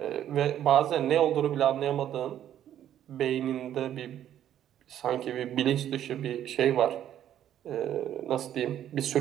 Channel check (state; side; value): quieter; left; 10.9 dB